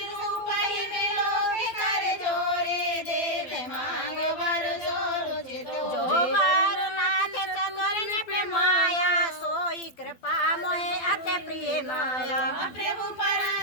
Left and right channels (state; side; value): late; right; 12 ms